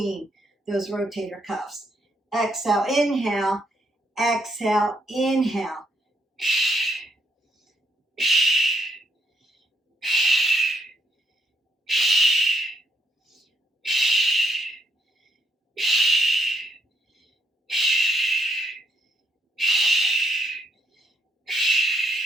those rotator cuffs. Exhale, inhale, exhale, inhale.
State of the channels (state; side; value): normal; both; correlation 0.75